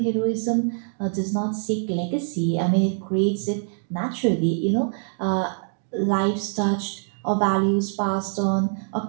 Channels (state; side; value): silent; left; 62 dB below the other